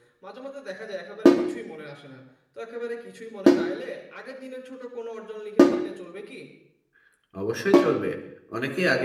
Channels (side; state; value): both; identical; correlation 1.00